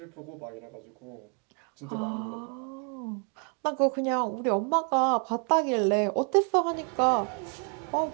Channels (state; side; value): quieter; left; 39.2 dB